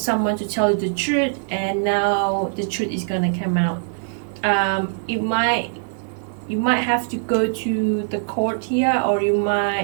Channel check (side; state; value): left; silent; 57 dB below the other